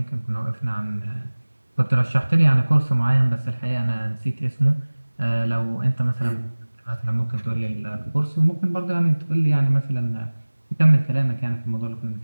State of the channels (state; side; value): inverted; both; correlation -1.00